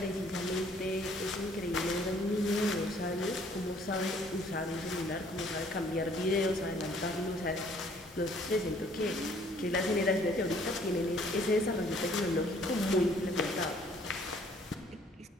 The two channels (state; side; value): normal; both; correlation 0.60